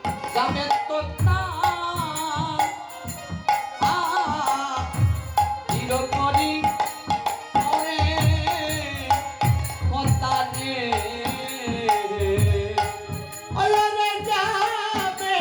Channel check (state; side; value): identical; both; correlation 1.00